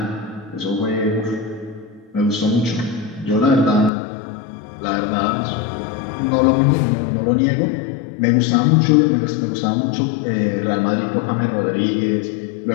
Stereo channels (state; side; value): drops out; right; at 3.9 s